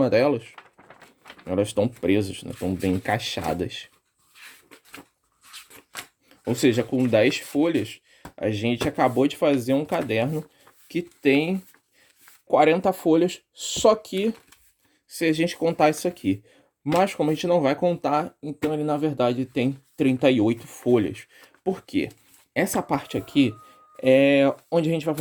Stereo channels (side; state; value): both; identical; correlation 1.00